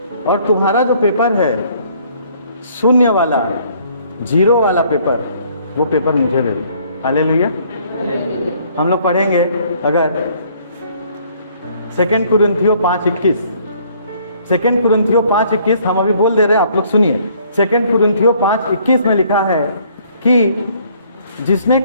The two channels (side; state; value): both; inverted; correlation -0.61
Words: और तुम्हारा जो पेपर है 0 वाला 0 वाला पेपर, वो पेपर मुझे दे दो। हालेलुया। हम लोग पढ़ेंगे अगर 2 कुरिन्थियों 5:21, 2 कुरिन्थियों 5:21 हम अभी बोल दे रहे हैं, आप लोग सुनिए। 2 कुरिन्थियों 5:21 में लिखा है कि जिसने